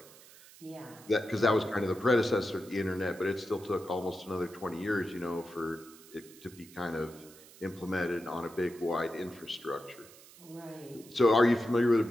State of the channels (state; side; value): noise; right; hiss, 21 dB below the sound